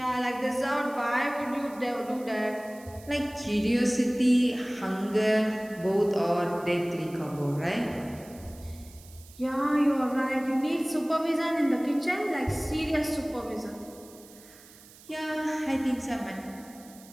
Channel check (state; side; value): noise; right; hiss, 22 dB below the sound